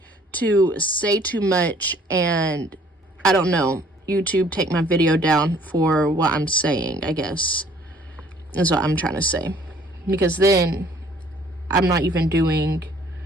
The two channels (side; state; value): both; normal; correlation 0.57